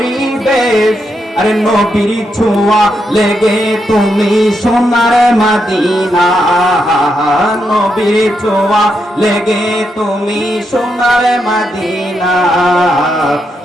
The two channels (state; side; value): normal; both; correlation 0.82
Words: আরে নবীর ছোঁয়া লেগে তুমি সোনার মদিনা, নবীর ছোঁয়া লেগে তুমি সোনার মদিনা।